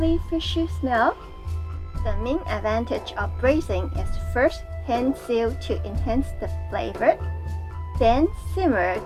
fishy smell. The main advantage of braising is first hand sear to enhance the flavor, then simmer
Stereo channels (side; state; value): both; identical; correlation 1.00